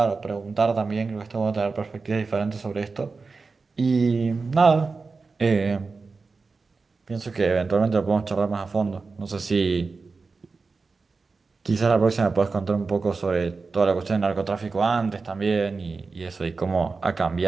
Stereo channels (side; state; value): left; quieter; 4.3 dB